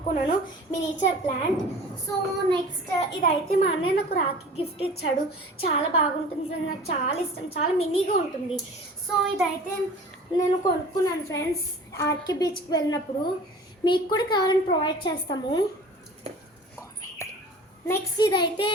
మినిచర్ ప్లాంట్. సో నెక్స్ట్ ఇదైతే మా అన్నయ్య నాకు రాఖీ గిఫ్ట్ ఇచ్చాడు. చాలా బాగుంటుంది ఫ్రెండ్స్, నాకు చాలా ఇష్టం, చాలా మినీగా ఉంటుంది. సో ఇదైతే నేను కొనుక్కున్నాను ఫ్రెండ్స్ ఆర్కే బీచ్కి వెళ్ళినప్పుడు. మీకు కూడా కావాలని ప్రొవైడ్ చేస్తాము. నెక్స్ట్ ఇదైతే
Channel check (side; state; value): both; normal; correlation 0.43